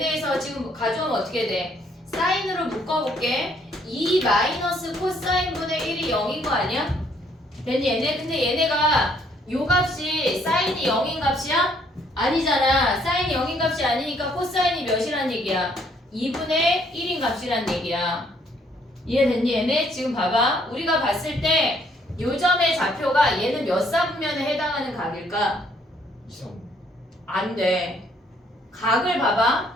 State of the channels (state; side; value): normal; both; correlation 0.66